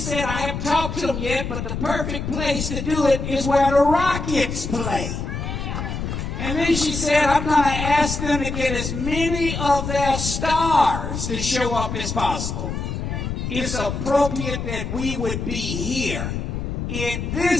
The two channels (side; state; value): left; noise; rumble, 4 dB below the sound